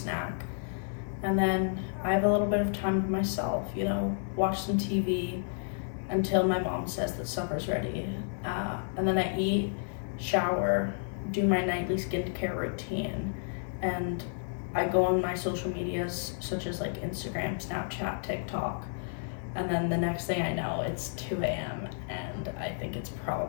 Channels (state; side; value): silent; right; 57 dB below the other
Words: And then I have a little bit of time to myself, watch some TV until my mom says that supper's ready. And then I eat, shower, do my nightly skincare routine, and I go on my social medias such as like Instagram, Snapchat, TikTok. And then the next thing I know, it's 2 a.m. and I think it's